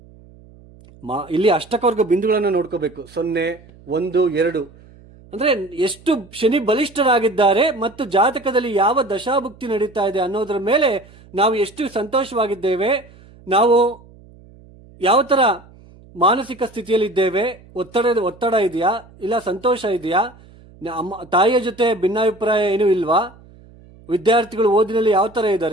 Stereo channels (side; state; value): right; noise; hum, 24 dB below the sound